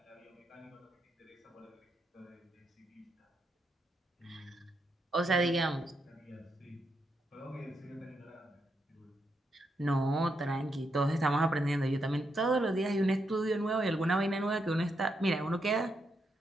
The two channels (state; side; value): normal; both; correlation 0.81